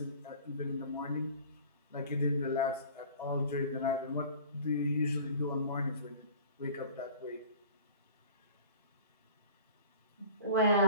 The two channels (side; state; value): both; inverted; correlation -0.43